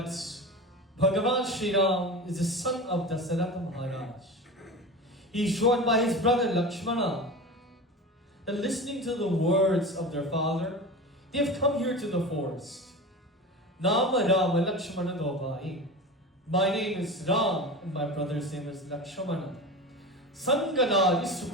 Bhagavan Shri Ram is the son of Dasharatha Maharaj, he is joined by his brother Lakshmana and listening to the words of their father, they have come here to the forest. Nama Rama Lakshmana Dovai. My name is Ram and my brother's name is Lakshmana. Sanganari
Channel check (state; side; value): normal; both; correlation 0.29